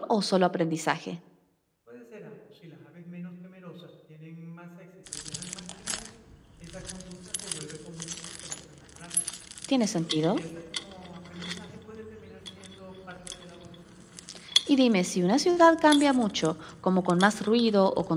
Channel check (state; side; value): identical; both; correlation 1.00